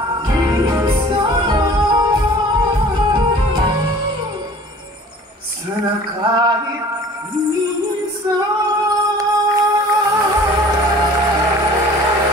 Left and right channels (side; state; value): both; normal; correlation 0.47